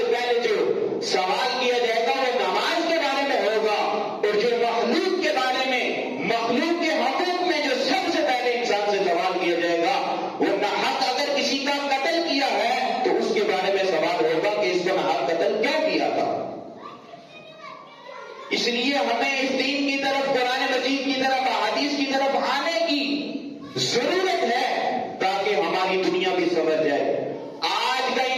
پہلے جو سوال کیا جائے گا وہ نماز کے بارے میں ہوگا، اور جو مخلوق کے بارے میں مخلوق کے حقوق میں جو سب سے پہلے انسان سے سوال کیا جائے گا وہ ناحق اگر کسی کا قتل کیا ہے تو اس کے بارے میں سوال ہوگا کہ اس کو ناحق قتل کیوں کیا تھا۔ اس لیے ہمیں اس دین کی طرف، قرآن مجید کی طرف، احادیث کی طرف آنے کی ضرورت ہے تاکہ ہماری دنیا بھی سنور جائے۔ آج کا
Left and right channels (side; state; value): both; identical; correlation 1.00